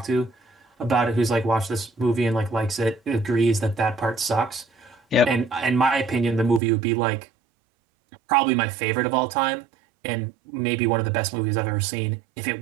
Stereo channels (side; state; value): left; drops out; at 6.6 s